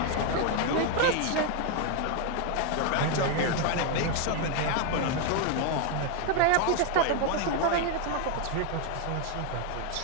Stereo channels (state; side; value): different; both; correlation 0.01